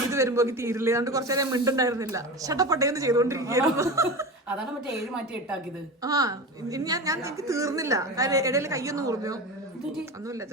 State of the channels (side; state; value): both; normal; correlation 0.27